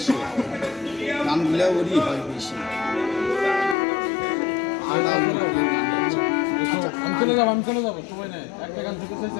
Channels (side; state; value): right; drops out; at 3.8 s